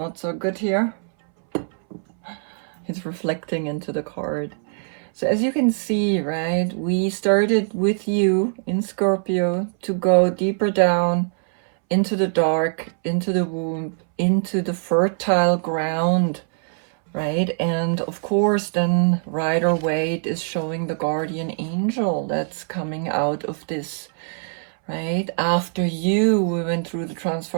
so good here. It's reflecting into the card. So as you can see, right, we started with you in Scorpio to go deeper down into the dark, into the womb, into the fertile ground, right? And of course, then Rider-Waite is showing the guardian angel that's coming out of this, right? After you, we went through the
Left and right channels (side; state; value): left; silent; 64 dB below the other